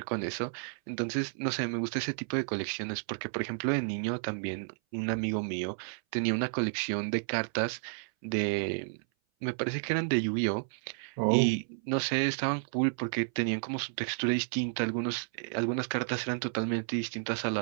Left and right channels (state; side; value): silent; left; 57 dB below the other